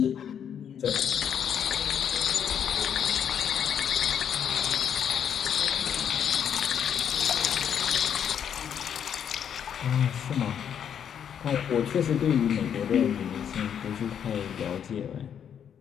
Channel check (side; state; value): right; quieter; 8.5 dB